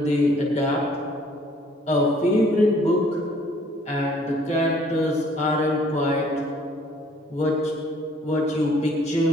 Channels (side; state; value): both; normal; correlation 0.59